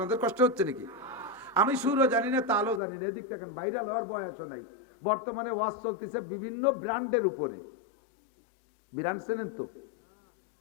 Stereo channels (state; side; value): drops out; right; at 2.8 s